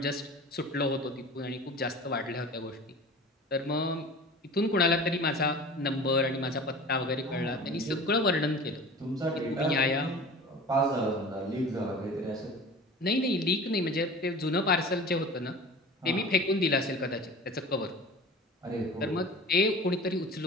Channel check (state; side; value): normal; both; correlation 0.38